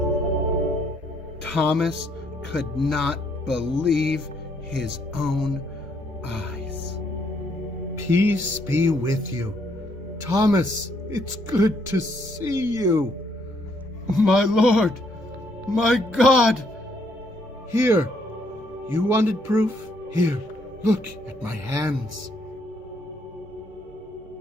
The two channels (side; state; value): both; normal; correlation 0.70